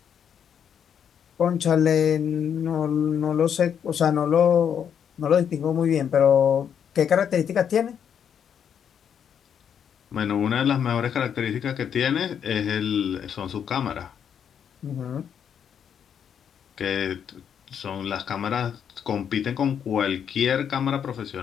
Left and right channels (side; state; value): right; quieter; 8.2 dB